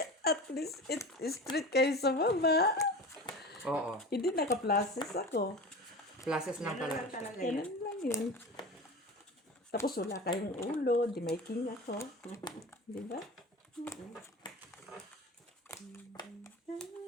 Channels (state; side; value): normal; both; correlation 0.32